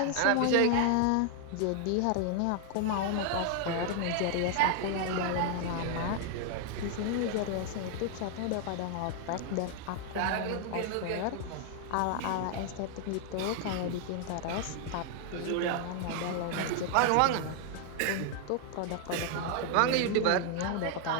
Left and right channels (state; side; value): different; both; correlation 0.00